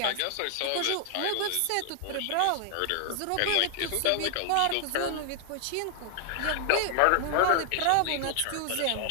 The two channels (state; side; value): different; both; correlation 0.00